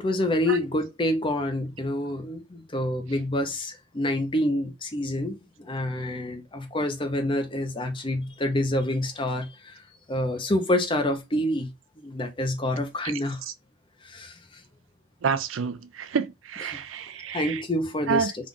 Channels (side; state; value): both; normal; correlation 0.50